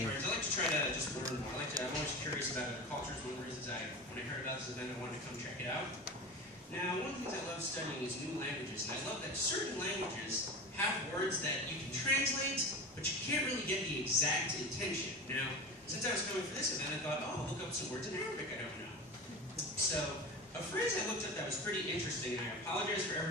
like to try to just learn more. I'm always curious about cultures. One of the reasons when I heard about this event, I wanted to come check it out. Now, one of the things I love studying is new languages, and I love that certain languages have words that you can translate, but you can't really get the exact intention. Now, since I was coming for this event, I thought, oh, I'll look up some words in Arabic I don't know. So, a phrase I looked up that was pretty interesting, and I apologize for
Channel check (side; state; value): both; normal; correlation 0.28